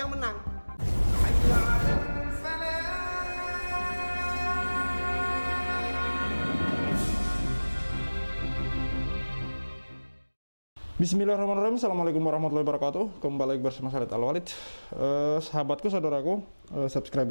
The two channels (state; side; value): inverted; both; correlation -1.00